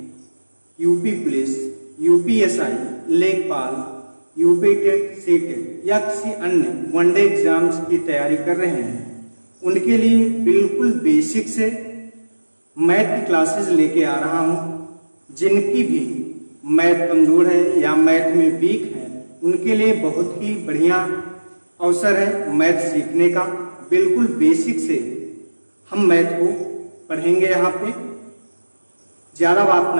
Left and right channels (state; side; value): inverted; both; correlation -1.00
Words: UP police, UPSI, लेखपाल, यूपी टेट, सीटेट या किसी अन्य वनडे एग्जाम्स की तैयारी कर रहे हैं, उनके लिए बिल्कुल बेसिक से मैथ की क्लासेस लेके आ रहा हूँ। जिनकी भी मैथ कमजोर है या मैथ में वीक है, उनके लिए बहुत ही बढ़िया अवसर है मैथ सीखने का। बिल्कुल बेसिक से हम मैथ को पढ़ेंगे। यहाँ पे ज़्यादा बात